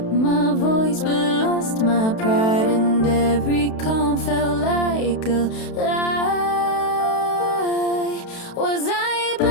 my voice but lost my pride, and every calm felt like a lie. Was I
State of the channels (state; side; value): late; right; 32 ms